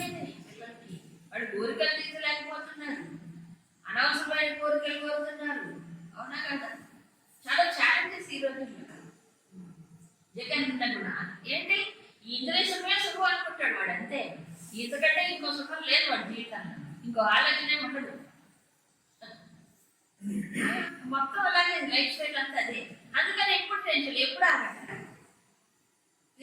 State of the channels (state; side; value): identical; both; correlation 1.00